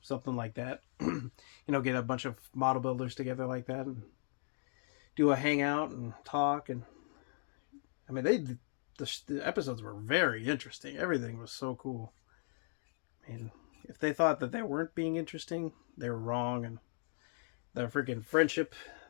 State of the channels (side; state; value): right; silent; digital silence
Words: something like that. You know, get a bunch of model builders together like that and do a hangout and talk. And I mean, the episodes were very interesting. Everything was so cool. I mean, if they thought that they weren't being interesting, they were wrong. And the freaking friendship